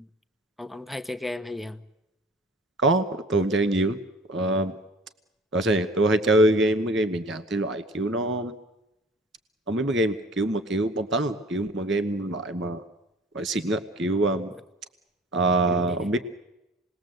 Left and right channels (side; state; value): both; normal; correlation 0.47